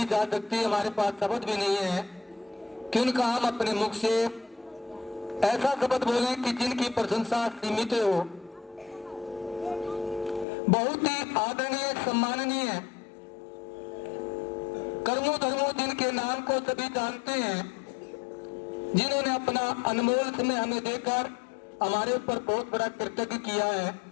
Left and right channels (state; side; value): drops out; right; at 10.5 s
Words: जा सकती, हमारे पास शब्द भी नहीं है कि उनका हम अपने मुख से ऐसा शब्द बोलें कि जिनकी प्रशंसा सीमित हो। बहुत ही आदरणीय सम्माननीय कर्मों धर्मों जिनके नाम को सभी जानते हैं, जिन्होंने अपना अनमोल समय हमें देकर हमारे ऊपर बहुत बड़ा कृतज्ञ किया है।